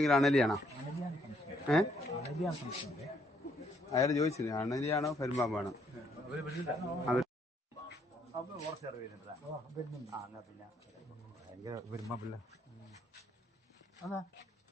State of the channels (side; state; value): both; normal; correlation 0.70